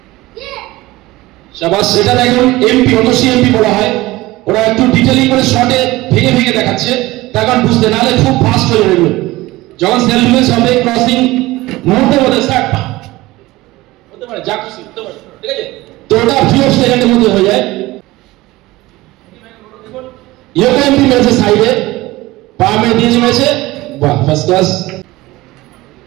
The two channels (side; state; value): left; quieter; 19.1 dB